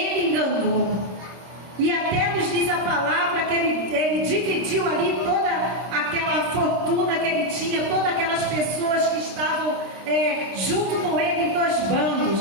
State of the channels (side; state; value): left; late; 26 ms